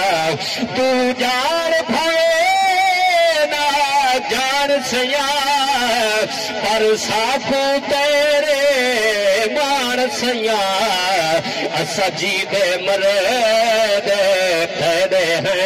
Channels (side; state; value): both; identical; correlation 1.00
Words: तू जान भवे ना जान सया पर साखो तेरे मान सया असा जी दे मरद ठहरे